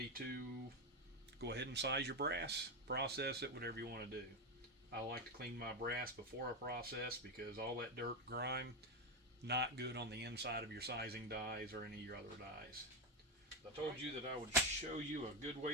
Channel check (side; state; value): both; normal; correlation 0.11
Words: to go ahead and size your brass, process it, whatever you want to do. I like to clean my brass before I process because all that dirt, grime, not good on the inside of your sizing dies or any of your other dies. I told you that I would show you a good